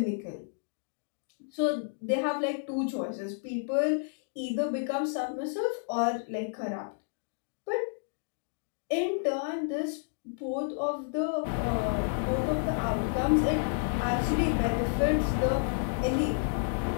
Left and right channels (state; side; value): silent; right; digital silence